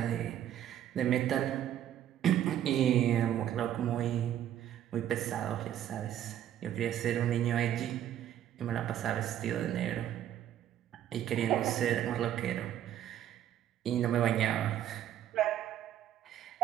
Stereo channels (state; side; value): quieter; left; 11.2 dB